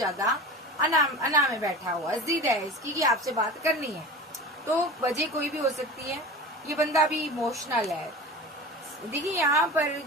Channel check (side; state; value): both; normal; correlation 0.33